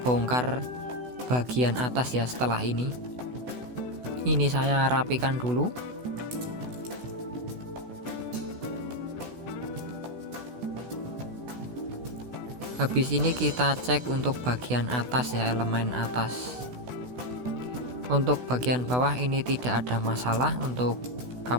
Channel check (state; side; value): late; left; 16 ms